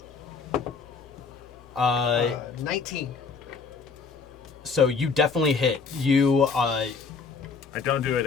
19. So you definitely hit. You, I don't do it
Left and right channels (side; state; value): right; quieter; 5.0 dB